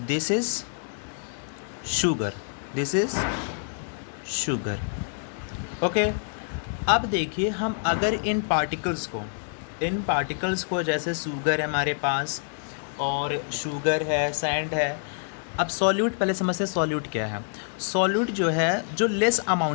दिस इज़ शुगर, ओके. अब देखिए हम अगर इन पार्टिकल्स को जैसे शुगर है हमारे पास और शुगर है, सैंड है। अब सॉल्यूट पहले समझते हैं सॉल्यूट क्या है। सॉल्यूट जो है जो लेस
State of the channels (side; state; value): right; silent; digital silence